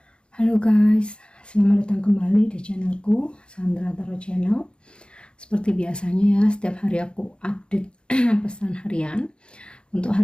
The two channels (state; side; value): late; right; 0.054 ms